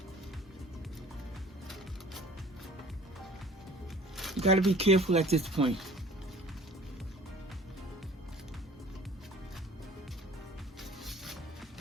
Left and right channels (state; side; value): normal; both; correlation 0.48